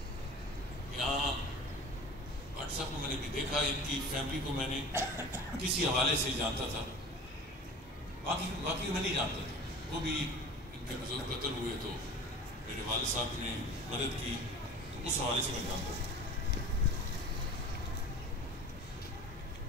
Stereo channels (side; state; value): both; normal; correlation 0.39